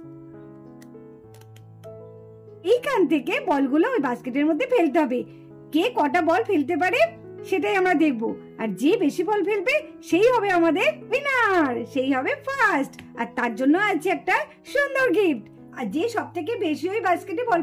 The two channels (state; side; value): identical; both; correlation 1.00